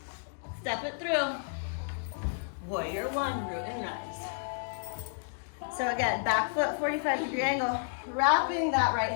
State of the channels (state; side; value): silent; right; digital silence